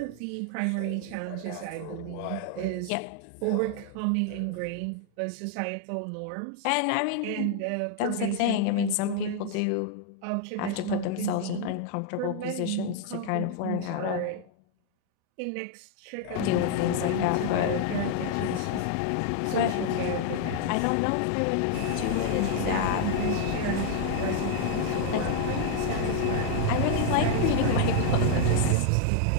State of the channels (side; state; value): both; different; correlation 0.00